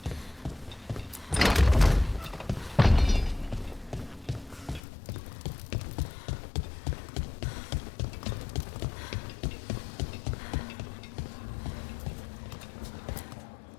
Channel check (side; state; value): right; drops out; at 4.8 s